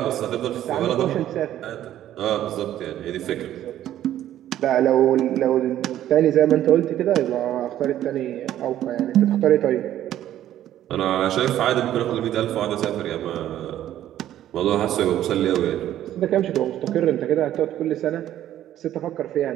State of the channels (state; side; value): quieter; left; 12.2 dB